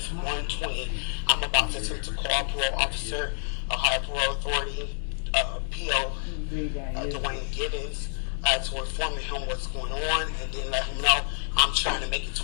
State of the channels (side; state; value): right; silent; 59 dB below the other